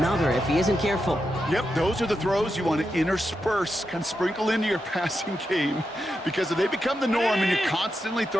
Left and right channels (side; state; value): both; normal; correlation 0.87